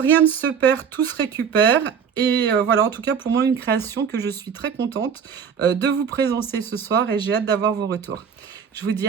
ne se perd, tout se récupère. Et voilà, en tout cas, pour moi, une création que je suis très contente de vous présenter ce soir et j'ai hâte d'avoir vos retours. Je vous dis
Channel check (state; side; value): quieter; left; 7.1 dB